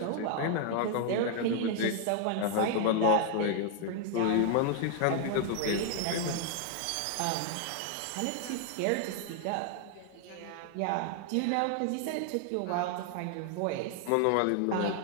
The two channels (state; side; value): different; both; correlation 0.00